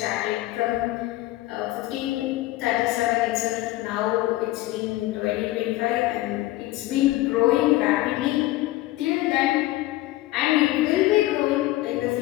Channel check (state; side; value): quieter; right; 17.5 dB